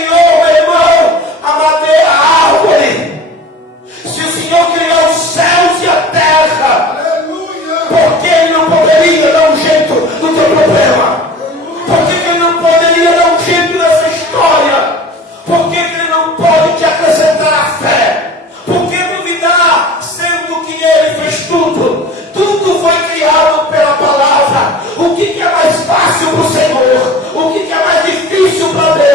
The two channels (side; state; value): both; normal; correlation 0.41